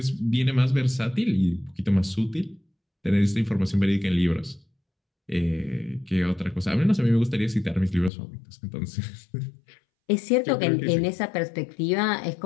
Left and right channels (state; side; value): drops out; right; at 8.1 s